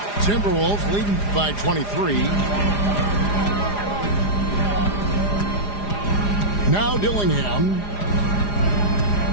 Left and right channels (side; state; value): right; late; 4.9 ms